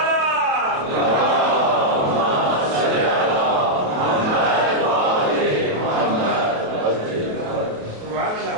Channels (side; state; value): left; late; 27 ms